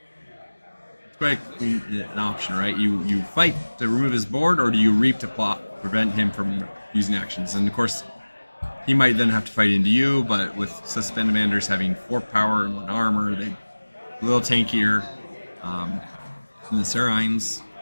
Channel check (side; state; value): both; inverted; correlation -1.00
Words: quite an option, right? You fight to remove his board, or do you reap to prevent him from using actions? And of course, he might then have to fight into you, but with suspended manders having 4 power and 1 armor, they a little tankier than the Serines.